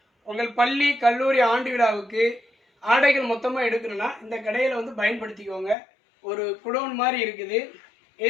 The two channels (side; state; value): right; drops out; at 5.8 s